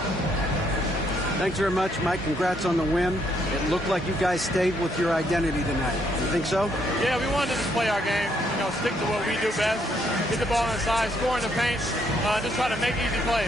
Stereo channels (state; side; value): normal; both; correlation 0.72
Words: Thanks very much, Mike. Congrats on the win. It looked like you guys stayed with your identity tonight. You think so? Yeah, we wanted to just play our game, stick to what we do best, get the ball inside, score in the paint, just try to make easy plays.